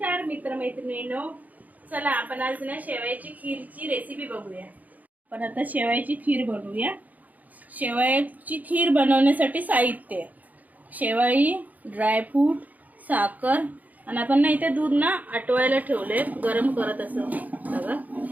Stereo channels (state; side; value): late; left; 0.079 ms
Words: मित्रमैत्रिणींनो, चला आपण आज ना शेवयाची खीरची रेसिपी बघूया। आपण आता शेवयाची खीर बनवूया। शेवयाची खीर बनवण्यासाठी साहित्य: शेवई, ड्रायफ्रूट, साखर आणि आपण ना इथे दूध ना आटवायला ठेवले, गरम करत असं बघा।